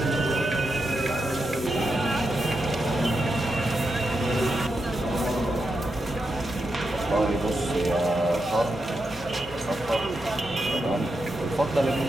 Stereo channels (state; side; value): normal; both; correlation 0.86